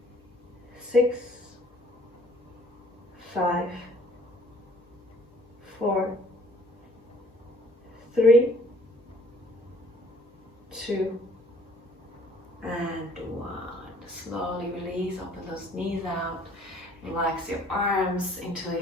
6, 5, 4, 3, 2, and 1. Slowly release, open those knees out, relax your arms,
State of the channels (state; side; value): normal; both; correlation 0.57